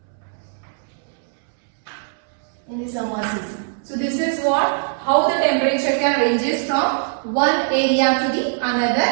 In the summer season. So this is how the temperature can ranges from one area to the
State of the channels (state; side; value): silent; left; 65 dB below the other